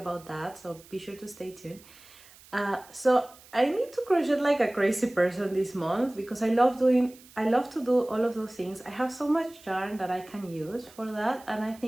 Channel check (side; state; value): right; noise; hiss, 23 dB below the sound